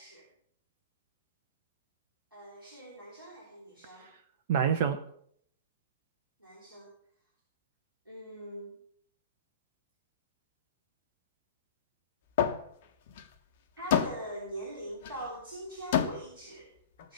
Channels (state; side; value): inverted; both; correlation -0.34